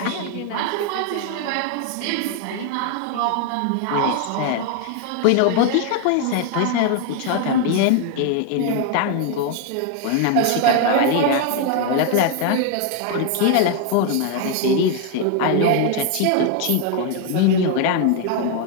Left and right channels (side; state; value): both; different; correlation 0.00